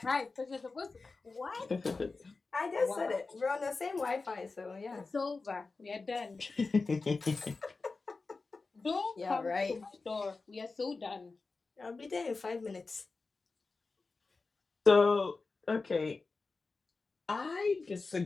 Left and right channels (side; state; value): right; quieter; 4.0 dB